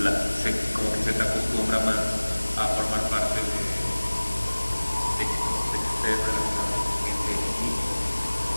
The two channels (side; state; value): both; inverted; correlation -1.00